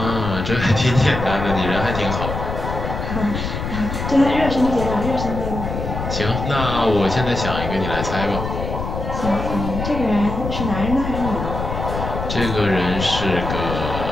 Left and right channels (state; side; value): noise; left; rumble, 5 dB below the sound